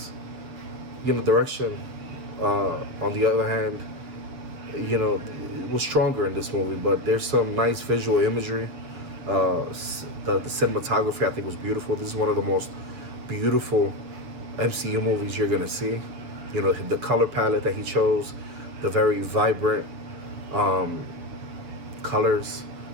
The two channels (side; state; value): left; late; 7.6 ms